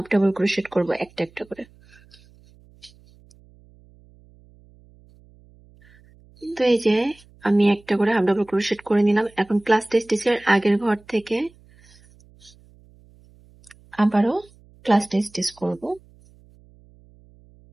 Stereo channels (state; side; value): noise; right; hum, 28 dB below the sound